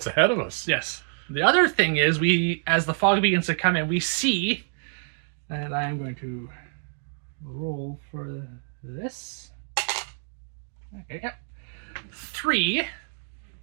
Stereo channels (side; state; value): left; silent; 60 dB below the other